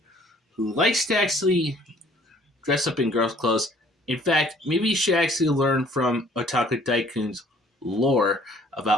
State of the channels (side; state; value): both; normal; correlation 0.57